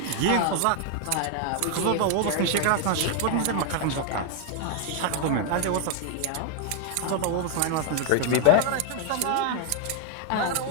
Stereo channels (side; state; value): both; different; correlation 0.00